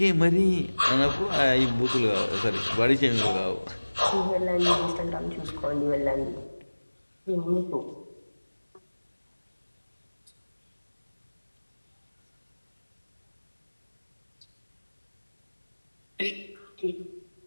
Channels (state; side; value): inverted; both; correlation -1.00